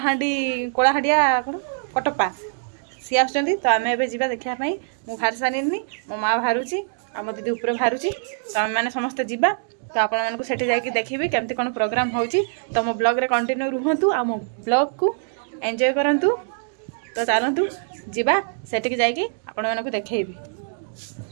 कौन कटप्पा सी आस तो आम ए जा देखापी मुझे बाहर सारी मो माँ बाहरुची आ मो दीदी ऊपर बाहरुची तो आम मैंने समस्ते जा तो आपको सेठी जाकि देखिए केमती कौन प्रोग्राम होची तो मो ब्लॉग रे कंटिन्यू रुहतु आ मो ब्लॉग को एंजॉय करंतु तो चलतु जा सेठी जाकि आपण मानक देखैबी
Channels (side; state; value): left; silent; digital silence